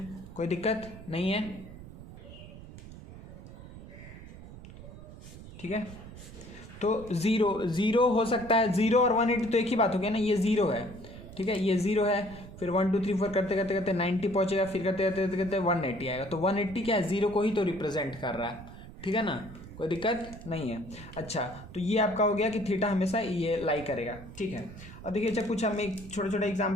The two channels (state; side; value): noise; right; rumble, 15 dB below the sound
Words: कोई दिक्कत नहीं है, ठीक है। तो ज़ीरो हो सकता है, ज़ीरो और 180 तो एक ही बात हो गया ना, ये ज़ीरो है, ठीक है, ये ज़ीरो है, फिर 1 2 3 4 करते करते करते 90 पहुंचेगा, फिर करते करते करते करते 180 आएगा। तो 180 क्या है, ज़ीरो को ही तो रिप्रेजेंट कर रहा है, ठीक है ना, कोई दिक्कत नहीं है। अच्छा, तो ये आपका हो गया कि थीटा हमेशा ये लाई करेगा, ठीक है। और देखिए अच्छा, कुछ हम एक छोटे छोटे